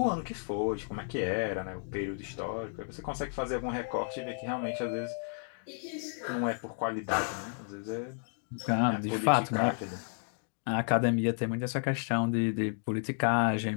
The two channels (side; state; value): right; silent; 56 dB below the other